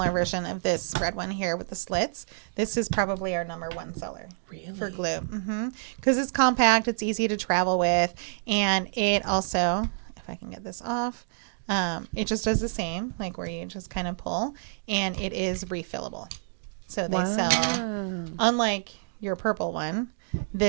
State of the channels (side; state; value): left; silent; digital silence